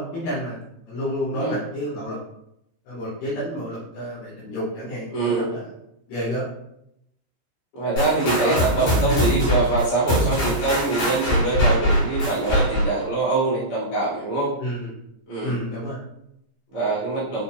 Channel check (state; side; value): late; right; 17 ms